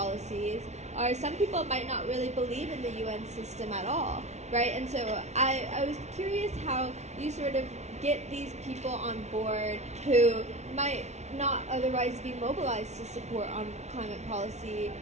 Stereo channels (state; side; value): late; left; 0.32 ms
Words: or some people might not really believe in the UN system at all, right? And so I was curious how you sort of get these people on board who might not otherwise be mobilized to support on climate policy